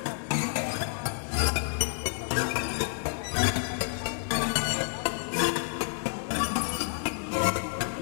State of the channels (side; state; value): right; silent; 58 dB below the other